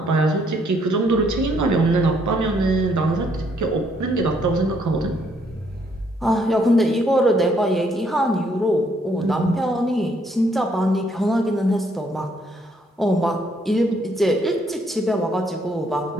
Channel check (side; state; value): both; normal; correlation 0.69